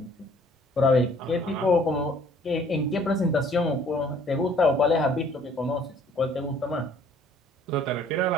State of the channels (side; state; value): both; normal; correlation 0.57